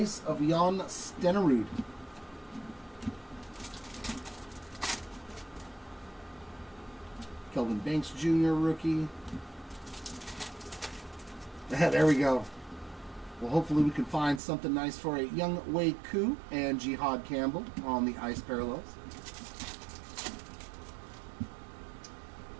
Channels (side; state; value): left; drops out; at 14.4 s